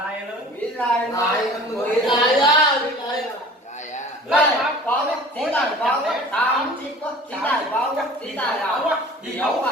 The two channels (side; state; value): both; normal; correlation 0.45